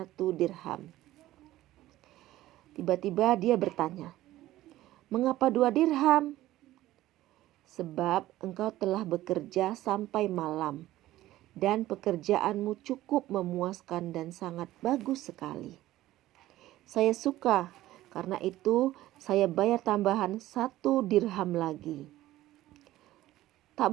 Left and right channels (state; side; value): quieter; left; 15.4 dB